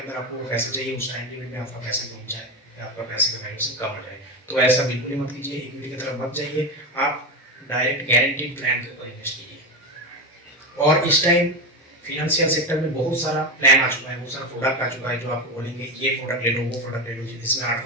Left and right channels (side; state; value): both; normal; correlation 0.17